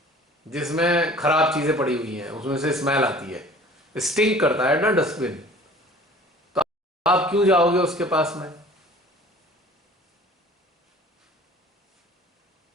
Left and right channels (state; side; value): normal; both; correlation 0.47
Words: जिसमें खराब चीजें पड़ी हुई हैं उसमें से स्मेल आती है, स्टिंक करता है ना डस्टबिन। तो आप क्यों जाओगे उसके पास में?